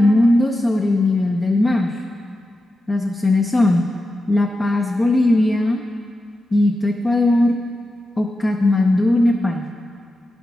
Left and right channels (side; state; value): both; normal; correlation 0.90